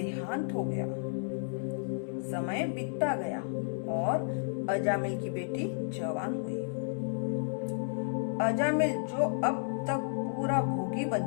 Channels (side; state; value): right; silent; 56 dB below the other